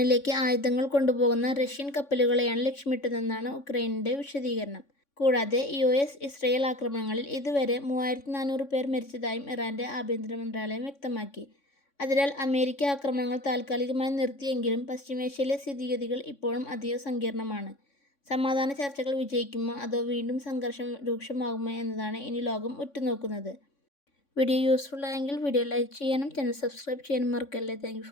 ആയുധങ്ങൾ കൊണ്ടുപോകുന്ന റഷ്യൻ കപ്പലുകളെയാണ് ലക്ഷ്യമിട്ടതെന്നാണ് ഉക്രൈനിന്റെ വിശദീകരണം. കൂടാതെ ഇസ്രയേൽ ആക്രമണങ്ങളിൽ ഇതുവരെ 3400 പേർ മരിച്ചതായും ഇറാന്റെ ആഭ്യന്തര മന്ത്രാലയം വ്യക്തമാക്കി. അതിനാൽ അമേരിക്ക ആക്രമണങ്ങൾ താൽക്കാലികമായി നിർത്തിയെങ്കിലും പശ്ചിമേഷ്യയിലെ സ്ഥിതിഗതികൾ ഇപ്പോഴും അതീവ സങ്കീർണമാണ്. സമാധാന ചർച്ചകൾ വിജയിക്കുമോ അതോ വീണ്ടും സംഘർഷം രൂക്ഷമാകുമോ എന്നതാണ് ഇനി ലോകം ഉറ്റുനോക്കുന്നത്. വീഡിയോ യൂസ്ഫുൾ ആയെങ്കിൽ വീഡിയോ ലൈക്ക് ചെയ്യാനും ചാനൽ സബ്സ്ക്രൈബ് ചെയ്യാനും മറക്കല്ലേ. Thank you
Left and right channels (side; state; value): right; late; 3.6 ms